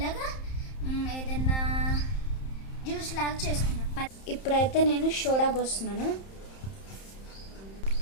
ఏదన్నా జ్యూస్ లాగా చేసుకుందాం. ఇప్పుడైతే నేను సోడా పోస్తున్నాను.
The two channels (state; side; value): late; right; 31 ms